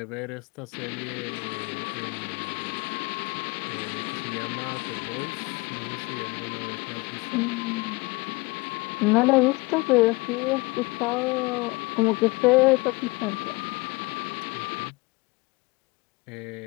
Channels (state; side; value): quieter; right; 24.5 dB